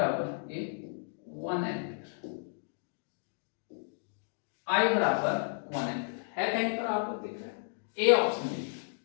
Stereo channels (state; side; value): silent; right; digital silence